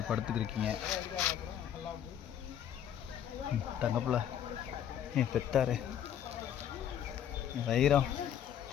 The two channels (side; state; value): right; quieter; 9.8 dB